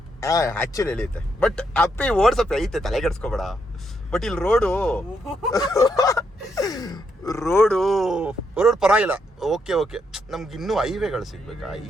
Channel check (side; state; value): both; normal; correlation 0.78